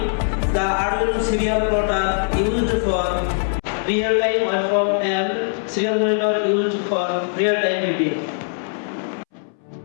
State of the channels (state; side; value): silent; right; 64 dB below the other